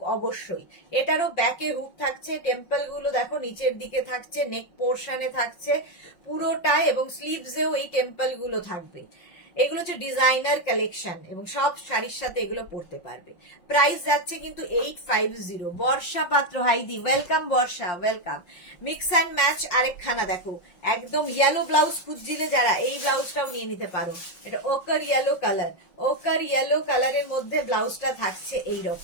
অবশ্যই, এটারও ব্যাকে হুক থাকছে, টেম্পল গুলো দেখো নিচের দিকে থাকছে, নেক পোর্শনে থাকছে পুরোটাই, এবং স্লিভসেও এই টেম্পল গুলো থাকবে। এগুলো হচ্ছে ডিজাইনার কালেকশন এবং সব শাড়ির সাথে এগুলো পরতে পারবে। প্রাইস যাচ্ছে কিন্তু 850। বর্ষা পাত্র, হাইদি welcome, Barsha welcome. Mix and match আরেকখানা দেখো, একদম ইয়েলো ব্লাউজ খুঁজছিলে যারা, এই ব্লাউজটাও নিয়ে নিতে পারো। এটা ওকার ইয়েলো কালারের মধ্যে ব্লাউজটা থাকছে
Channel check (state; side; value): late; right; 5.6 ms